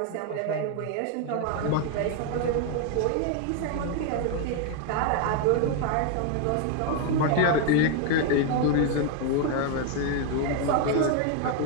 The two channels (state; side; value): different; both; correlation 0.01